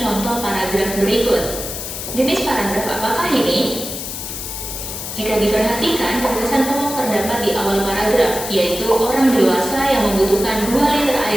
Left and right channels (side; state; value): left; noise; hiss, 7 dB below the sound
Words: paragraf berikut. Jenis paragraf apakah ini? Jika diperhatikan, gagasan pokok terdapat di awal paragraf, yaitu orang dewasa yang membutuhkan 2 liter